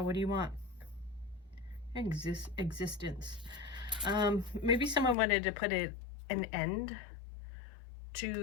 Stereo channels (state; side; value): drops out; right; at 5.2 s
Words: what do you want? Existence. Maybe someone wanted to put an end